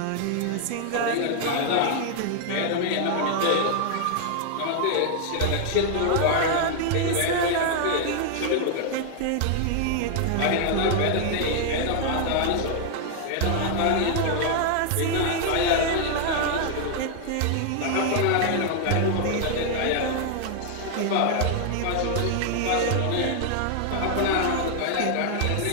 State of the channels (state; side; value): different; both; correlation -0.01